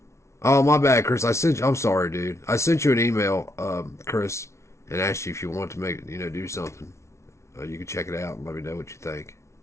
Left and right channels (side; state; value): right; late; 0.13 ms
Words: Oh, my bad, Chris. I'm sorry, dude. I sent you an email, Chris, and asked you if you want to do something. You can check it out and let me know what you think.